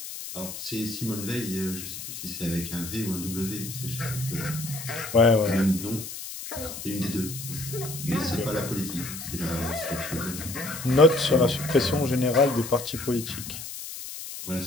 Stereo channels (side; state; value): left; noise; hiss, 9 dB below the sound